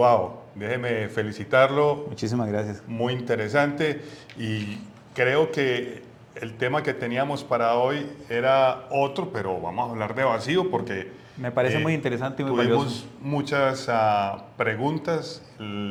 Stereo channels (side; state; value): both; identical; correlation 1.00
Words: déjeme felicitarlo, Muchísimas gracias. muy interesante y creo que el tema que teníamos para hoy era otro, pero vamos a hablar de vacío porque Me parece muy interesante y muy valioso. tuvimos muchas preguntas,